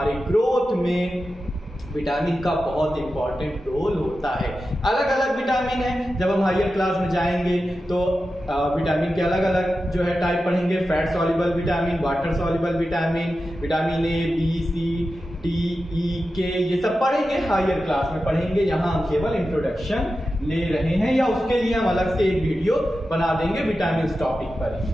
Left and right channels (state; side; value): normal; both; correlation 0.92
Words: ग्रोथ में विटामिन का बहुत इंपॉर्टेंट रोल होता है। अलग अलग विटामिन है, जब हम हायर क्लास में जाएंगे तो विटामिन के अलग अलग जो है टाइप पढ़ेंगे। Fat soluble vitamin, water soluble vitamin, vitamin A, B, C, D E के ये सब पढ़ेंगे, हायर क्लास में पढ़ेंगे। यहाँ हम केवल इंट्रोडक्शन ले रहे हैं, या उसके लिए हम अलग से एक वीडियो बना देंगे विटामिन टॉपिक पर ही,